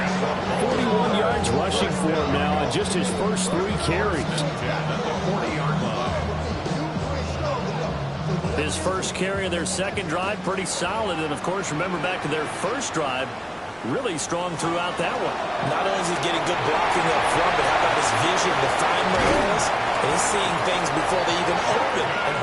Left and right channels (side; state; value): both; identical; correlation 1.00